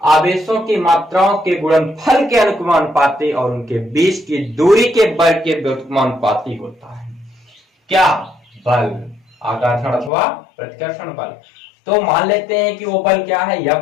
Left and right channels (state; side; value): drops out; right; at 10.1 s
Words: आवेशों की मात्राओं के गुणनफल के अनुक्रमानुपाती और उनके बीच की दूरी के वर्ग के व्युत्क्रमानुपाती होता है। क्या? बल, आकर्षण अथवा प्रतिकर्षण बल। तो मान लेते हैं कि वो बल क्या है?